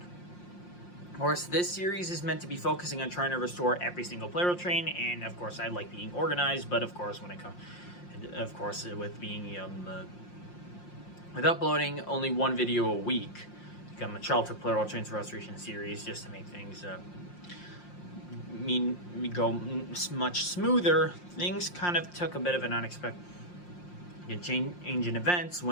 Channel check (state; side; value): late; right; 5.7 ms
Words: Of course, this series is meant to be focusing on trying to restore every single Plarail train, and of course, I like being organized, but of course, with uploading only one video a week, become a Childhood Plarail Trains Restoration series, just to make things go much smoother. Things kind of took a bit of an unexpected change in events